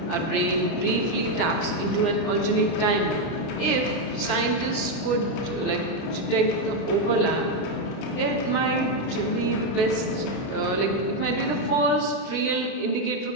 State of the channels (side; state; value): right; late; 30 ms